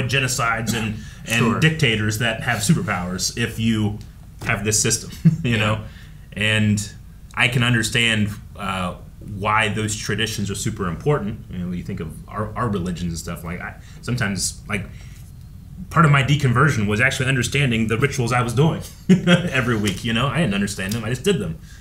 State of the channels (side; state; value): both; identical; correlation 1.00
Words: genocides and dictators that have superpowers if you have this system, you know? And I can understand why those traditions are super important. You know, you think of our religions and stuff. Like sometimes, like part of my deconversion was actually understanding the rituals I was doing every week. You know, I didn't understand them; I just did them.